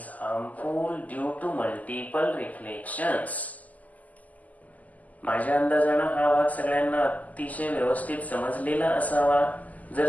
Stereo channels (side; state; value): right; late; 0.077 ms